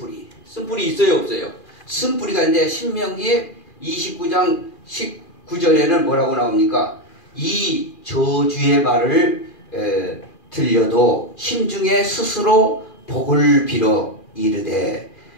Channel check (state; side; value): late; right; 2.4 ms